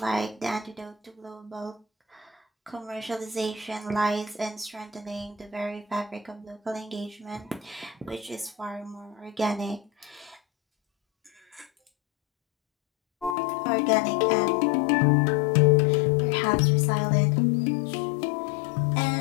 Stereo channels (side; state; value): right; drops out; at 13.4 s